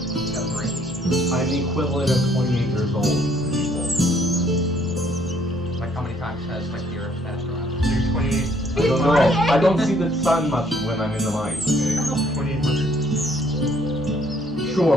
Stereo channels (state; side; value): normal; both; correlation 0.65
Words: I'm the equivalent of 28 years old. Like how many times has like the earth passed around? You're 28. I He's don't know. 28. I don't see the sun much when I'm in the mines. Okay? 2800.